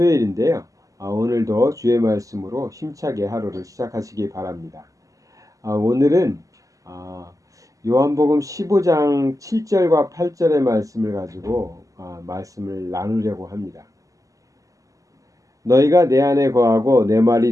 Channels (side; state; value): left; late; 0.16 ms